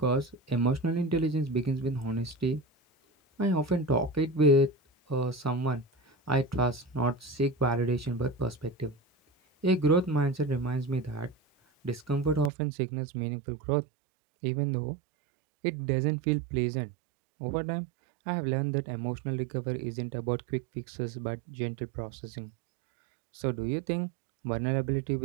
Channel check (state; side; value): drops out; left; at 12.5 s